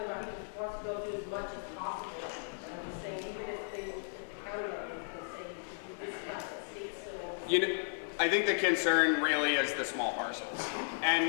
about he wants to go do as much as possible. And he's saying even if the county level is saying you do this much, the state still. You know, I think the concern really is the small parcels.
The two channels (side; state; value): right; silent; digital silence